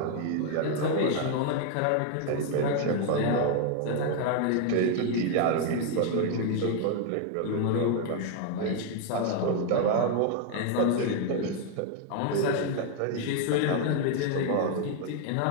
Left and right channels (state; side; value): different; both; correlation 0.01